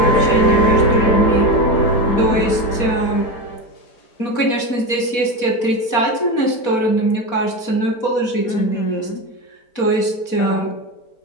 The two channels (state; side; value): late; right; 4.2 ms